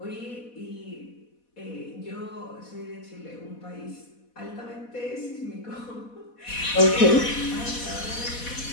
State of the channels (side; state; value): right; late; 4.1 ms